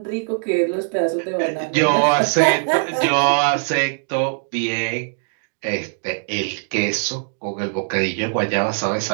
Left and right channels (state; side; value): silent; left; digital silence